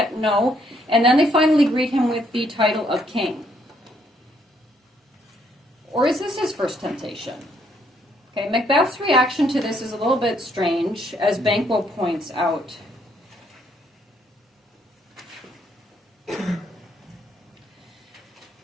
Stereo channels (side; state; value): both; normal; correlation 0.70